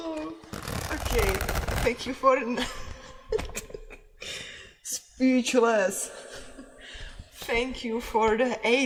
Okay, thank you for... Speechless. Thank you for the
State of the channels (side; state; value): both; identical; correlation 1.00